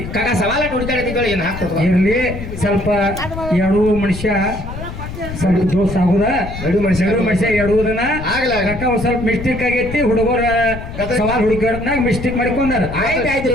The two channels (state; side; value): noise; left; rumble, 9 dB below the sound